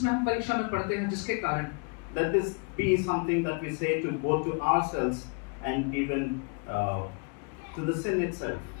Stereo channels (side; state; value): right; quieter; 35.9 dB